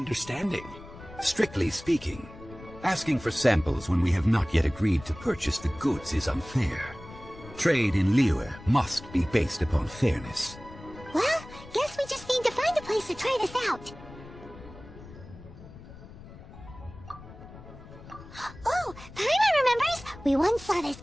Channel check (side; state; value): left; noise; rumble, 17 dB below the sound